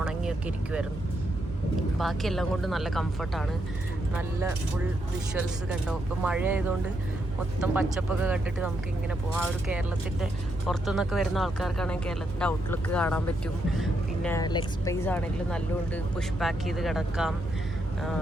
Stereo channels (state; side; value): normal; both; correlation 0.80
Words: ഉണങ്ങിയൊക്കെ ഇരിക്കുമായിരുന്നു. ബാക്കിയെല്ലാം കൊണ്ട് നല്ല കംഫർട്ടാണ്. നല്ല ഫുൾ വിഷ്വൽസ് കണ്ടോ. ഇപ്പോൾ മഴ ആയതുകൊണ്ട് മൊത്തം പച്ചപ്പൊക്കെ കണ്ടിട്ട് നമുക്ക് ഇങ്ങനെ പോകാം. ആ ഒരു കേരളത്തിൻ്റെ പുറത്തുനിന്നൊക്കെ വരുന്ന ആൾക്കാർക്കാണെങ്കിൽ കേരളത്തിൻ്റെ ഔട്ട്ലുക്ക് കാണാൻ പറ്റും. പിന്നെ ലെഗ് സ്പേസ് ആണെങ്കിലും നല്ലതുകൊണ്ട് പുഷ് ബാക്ക് ചെയ്ത് കിടക്കാം.